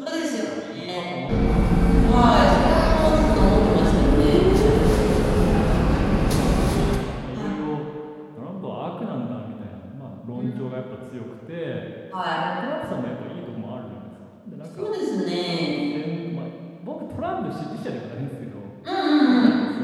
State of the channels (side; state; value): both; identical; correlation 1.00